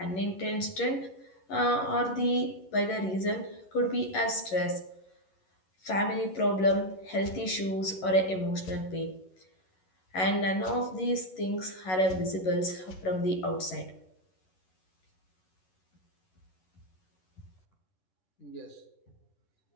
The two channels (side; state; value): right; late; 11 ms